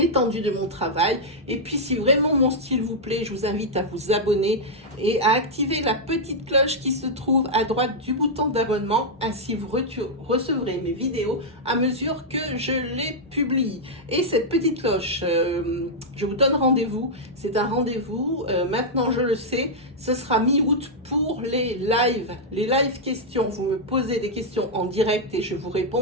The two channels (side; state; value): both; normal; correlation -0.05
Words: de mon travail. Et puis, si vraiment mon style vous plaît, je vous invite à vous abonner et à activer la petite cloche qui se trouve à droite du bouton d'abonnement. Ainsi, vous recevrez mes vidéos à mesure que je les publie. Et cette petite cloche, je vous donne rendez-vous. C'est un rendez-vous. Maintenant, je le sais, ce sera mi-août pour les lives. Les live questions. Vous me posez des questions en direct et je vous